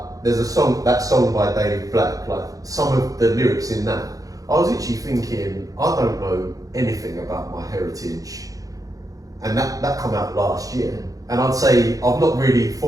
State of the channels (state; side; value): late; left; 0.17 ms